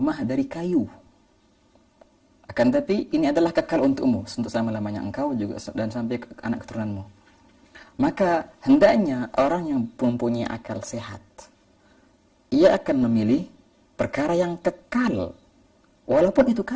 dari kayu, akan tapi ini adalah kekal untukmu untuk selama-lamanya engkau juga dan sampai ke anak keturunanmu. Maka hendaknya orang yang mempunyai akal sehat, ia akan memilih perkara yang kekal walaupun itu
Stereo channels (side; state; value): both; identical; correlation 1.00